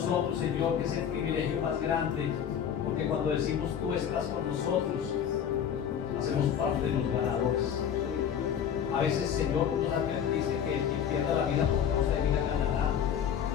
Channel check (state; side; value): quieter; right; 8.6 dB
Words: Señor, que es el privilegio más grande, porque cuando decimos tú estás con nosotros, hacemos parte de los ganadores. A veces, Señor, nos advertiste que quien pierda la vida por causa de vida ganará.